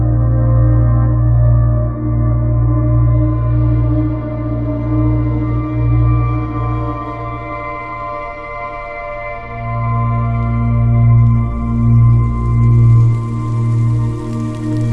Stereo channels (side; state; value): both; identical; correlation 1.00